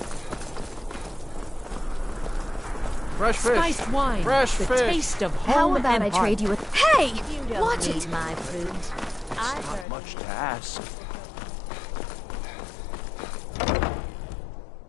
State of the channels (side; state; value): right; drops out; at 9.9 s